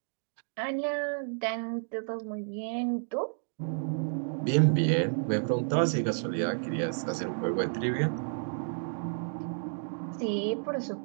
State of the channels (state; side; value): silent; left; digital silence